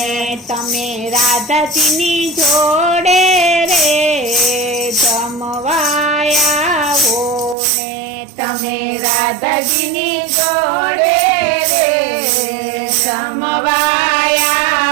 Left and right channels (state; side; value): drops out; left; at 7.6 s